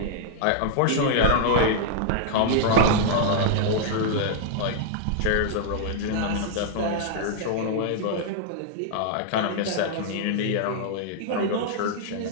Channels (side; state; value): both; different; correlation -0.01